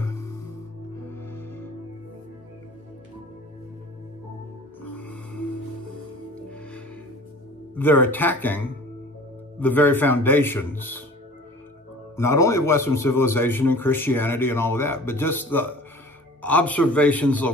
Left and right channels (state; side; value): normal; both; correlation 0.44